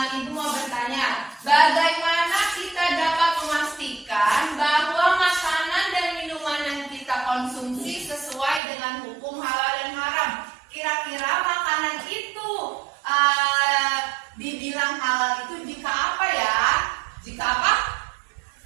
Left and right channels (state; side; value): drops out; left; at 8.6 s